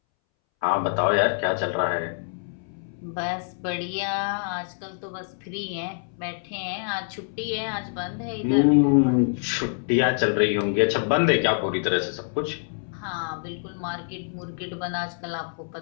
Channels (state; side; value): silent; right; 61 dB below the other